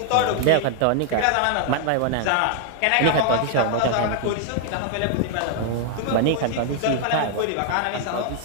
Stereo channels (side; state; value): both; different; correlation 0.00